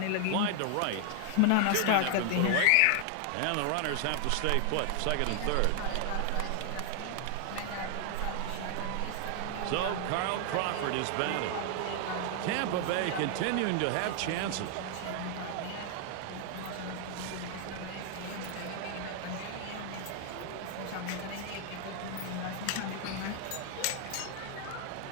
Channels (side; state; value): both; different; correlation 0.00